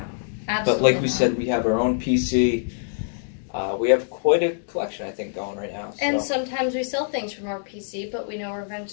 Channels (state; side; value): silent; right; digital silence